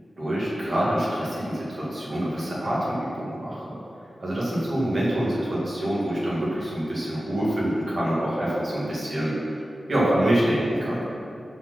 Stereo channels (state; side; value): normal; both; correlation 0.94